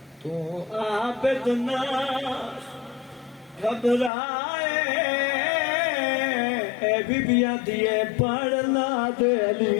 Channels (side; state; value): right; drops out; at 4.1 s